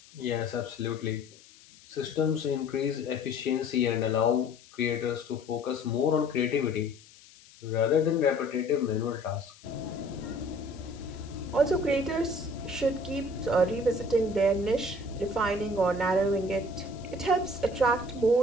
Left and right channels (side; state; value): left; noise; hiss, 24 dB below the sound